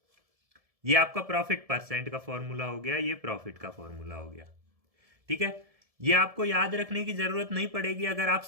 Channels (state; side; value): late; left; 1.7 ms